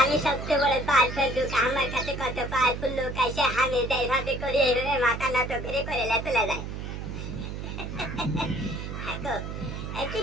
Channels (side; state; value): right; noise; hum, 6 dB below the sound